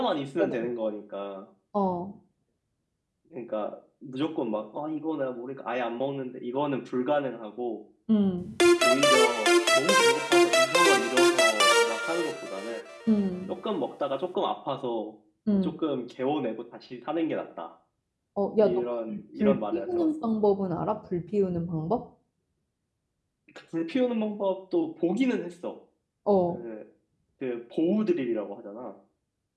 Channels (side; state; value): both; identical; correlation 1.00